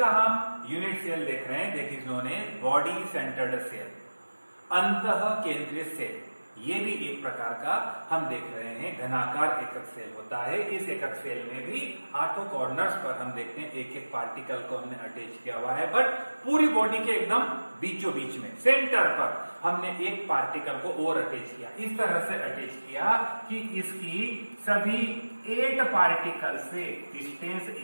हम यूनिट सेल देख रहे हैं, that is known as body centred cell, अंतः केंद्रित सेल। ये भी एक प्रकार का हम देख रहे हैं घनाकार एकक सेल होता है। इस एकक सेल में भी 8 कॉर्नर्स पर हम देखते हैं एक एक पार्टिकल को हमने अटैच किया हुआ है, बट पूरी बॉडी के एकदम बीचों बीच में सेंटर पर हमने एक पार्टिकल को और अटैच किया। इस तरह से अटैच किया कि इसकी सभी 8 पार्टिकल से डिस्टेंस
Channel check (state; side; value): inverted; both; correlation -1.00